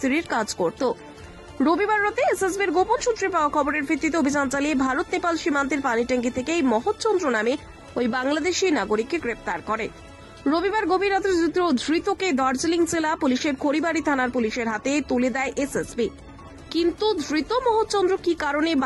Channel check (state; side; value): identical; both; correlation 1.00